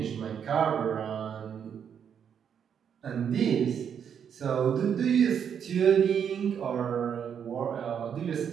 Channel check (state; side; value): quieter; left; 7.9 dB